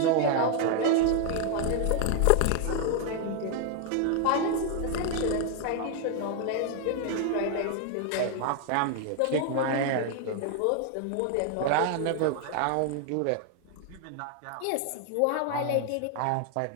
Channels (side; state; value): both; different; correlation 0.00